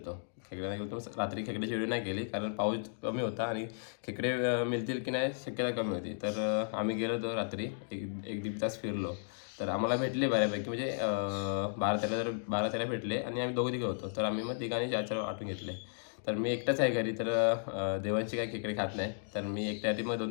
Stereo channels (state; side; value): silent; right; digital silence